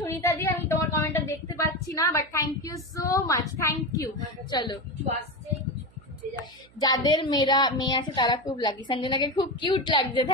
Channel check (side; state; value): right; noise; hum, 28 dB below the sound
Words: দি, আমি তোমার কমেন্টটা দেখতে পাচ্ছি না, but thank you so much, thank you. চলো, কিছু আসছে, কিছু কিছু যাচ্ছে। যাদের মেয়ে আছে তারা খুব লাকি। সঞ্জনাকে খুব কিউট লাগছে,